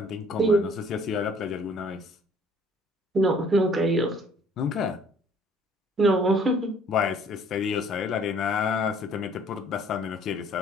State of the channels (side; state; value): both; normal; correlation 0.58